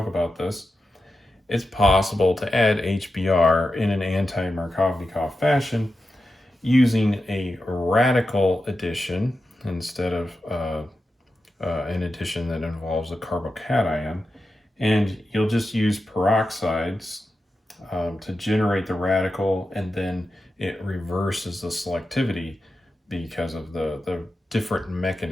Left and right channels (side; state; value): both; normal; correlation 0.90